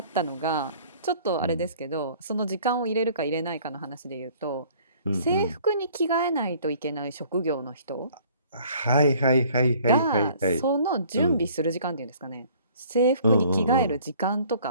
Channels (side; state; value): both; inverted; correlation -0.54